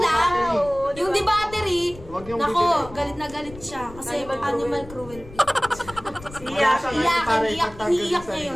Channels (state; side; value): noise; left; rumble, 17 dB below the sound